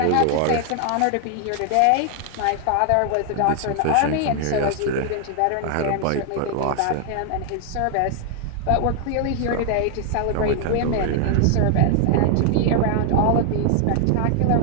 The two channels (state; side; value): different; both; correlation 0.00